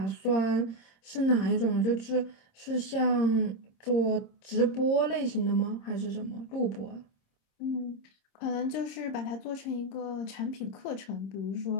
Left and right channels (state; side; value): late; right; 26 ms